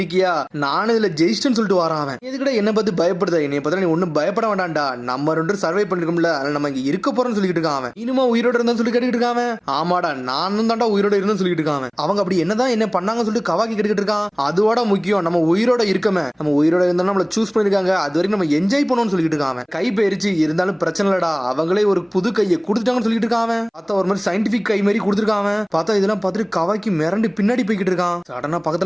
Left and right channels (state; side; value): identical; both; correlation 1.00